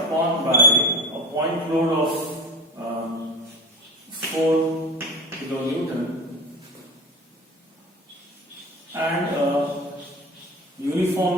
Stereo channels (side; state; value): both; normal; correlation 0.29